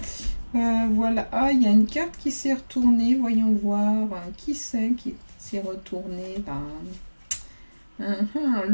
Voilà, ah, il y a une carte qui s'est retournée, voyons voir, qui c'est qui s'est retourné là.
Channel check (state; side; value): inverted; both; correlation -1.00